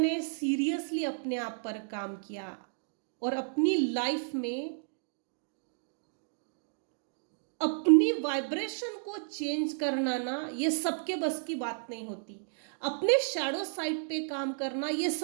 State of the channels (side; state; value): left; silent; digital silence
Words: सीरियसली अपने आप पर काम किया और अपनी लाइफ में अपनी वाइब्रेशन को चेंज करना ना, ये सबके बस की बात नहीं होती। अपने शैडो साइड पे काम करना ये